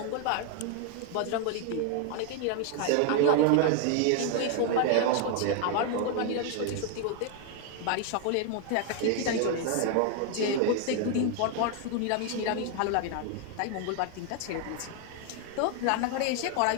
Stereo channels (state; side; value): different; both; correlation 0.01